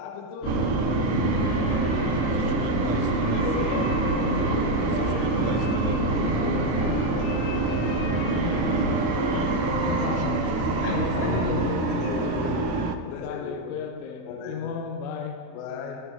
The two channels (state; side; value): late; right; 35 ms